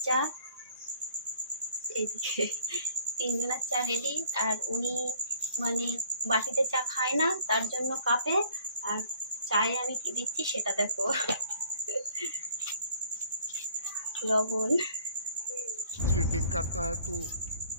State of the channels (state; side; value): inverted; both; correlation -0.57